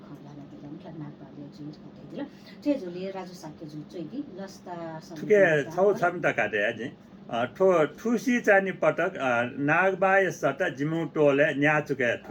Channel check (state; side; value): identical; both; correlation 1.00